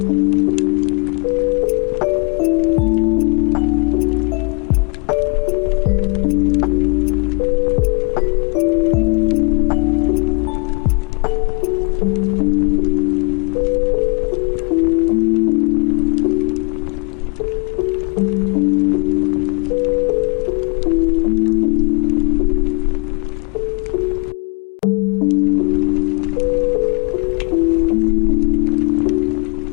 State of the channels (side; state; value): right; quieter; 32.3 dB